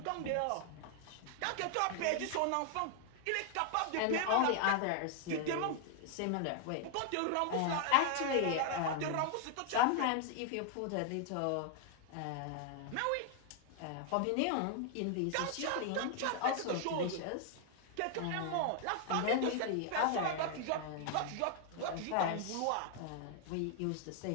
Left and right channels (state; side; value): different; both; correlation 0.00